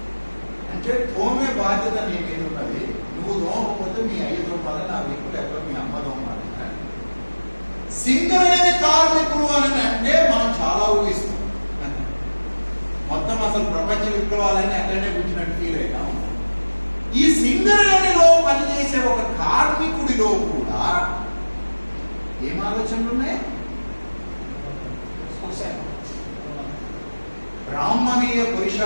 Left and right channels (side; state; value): both; inverted; correlation -1.00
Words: అంటే తోమే బాధ్యత నీ మీద ఉన్నది. నువ్వు తోమకపోతే మీ అయ్యతో ఉండాలి, నా వీపు లేకపోతే మీ అమ్మతో ఉండాలి. సింగరేణి కార్మికులు అని అంటే మనం చాలా ఊహిస్తాం. మొత్తం అసలు ప్రపంచ విప్లవాలని అక్కడనే కూర్చున్నట్టు ఫీల్ అయినా ఉంటాం. ఈ సింగరేణిలో పనిచేసే ఒక కార్మికుడిలో కూడా ఏం ఆలోచనలు ఉన్నాయి? బ్రాహ్మణీయ